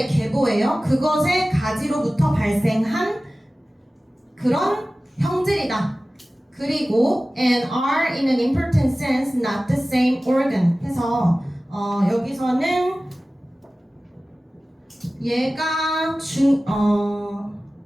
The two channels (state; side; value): normal; both; correlation 0.97